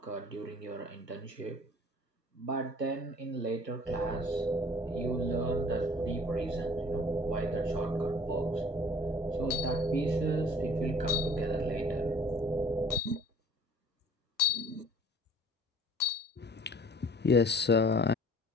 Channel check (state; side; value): normal; both; correlation 0.51